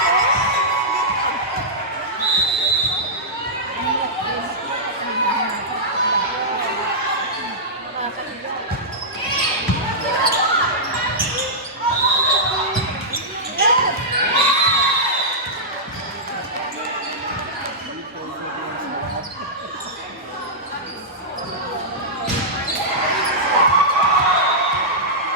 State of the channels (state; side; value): normal; both; correlation -0.13